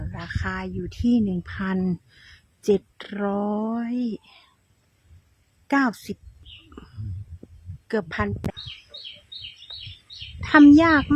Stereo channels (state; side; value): identical; both; correlation 1.00